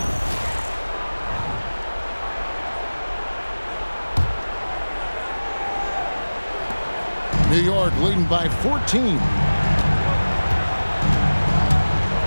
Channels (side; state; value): both; inverted; correlation -1.00